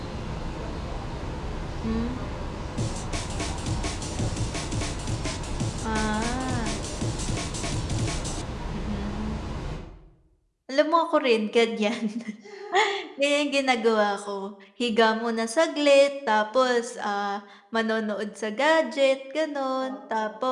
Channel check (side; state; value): both; identical; correlation 1.00